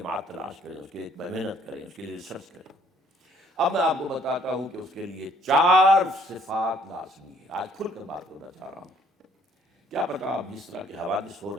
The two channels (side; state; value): both; normal; correlation 0.62